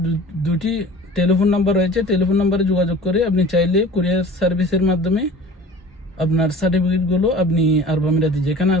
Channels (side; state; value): both; normal; correlation 0.42